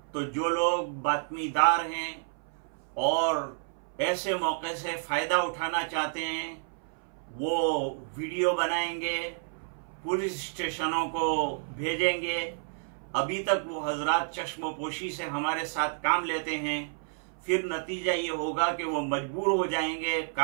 तो जो लोग बातमीदार हैं और ऐसे मौके से फ़ायदा उठाना चाहते हैं वो वीडियो बनाएंगे, पुलिस स्टेशनों को भेजेंगे। अभी तक वो हजरात चश्मोपोशी से हमारे साथ काम लेते हैं, फिर नतीजा ये होगा कि वो मजबूर हो जाएंगे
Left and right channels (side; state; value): left; silent; 58 dB below the other